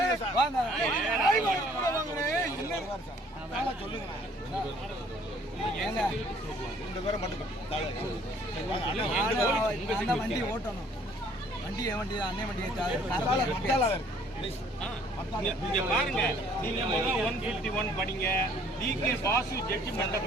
வாங்க வண்டி ஓட்டணும். வண்டி என் வண்டி அண்ணே வண்டி இங்க பாருங்க, நீங்க 151 படிங்க, டிகே பாசு ஜட்ஜ்மென்ட்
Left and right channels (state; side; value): normal; both; correlation 0.59